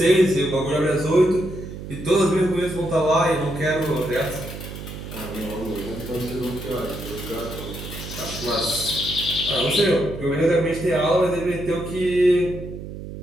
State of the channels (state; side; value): noise; right; hum, 10 dB below the sound